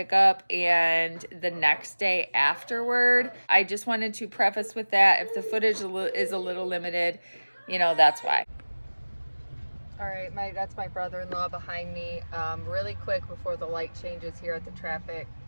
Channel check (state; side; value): inverted; both; correlation -1.00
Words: and the next day afterward. I just wanted to preface with that. If the footage is a little limited, you know, that's why. All right, that's my brother-in-law behind me. Really quick before the light changes here at the traffic